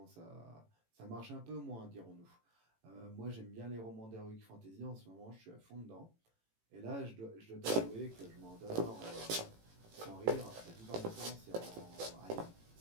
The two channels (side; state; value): left; late; 18 ms